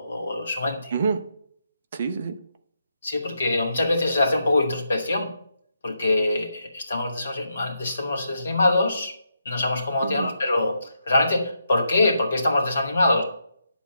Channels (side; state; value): both; inverted; correlation -0.81